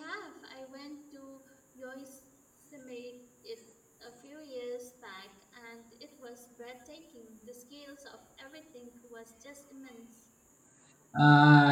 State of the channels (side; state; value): both; identical; correlation 1.00